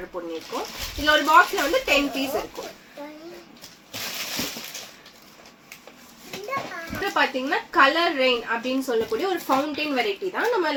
பண்ணிருக்கோம். இதுல ஒரு பாக்ஸ்ல வந்து 10 பீஸ் இருக்கும். பாத்தீங்கன்னா கலர் ரெயின் அப்படின்னு சொல்லக்கூடிய ஒரு ஃபவுண்டைன் வெரைட்டி தான். நம்ம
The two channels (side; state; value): both; identical; correlation 1.00